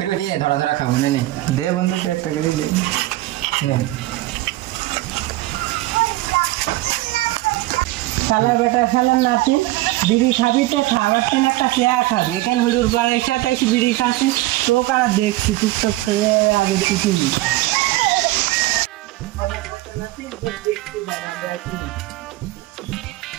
দিয়ে ধরা ধরা খাবো না। দে বন্ধু তো একটা করে দে। শালা বেটা শালার নাতিন বিড়ি খাবি তো খাবার তেন একটা চেয়া খাবি, এখানে হুড়ুর বাড়ির সাথে এসে বিড়ি খাচ্ছিস তো কারা দেখছি তুই তো খেয়ে আগে কিছু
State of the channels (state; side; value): quieter; left; 18.0 dB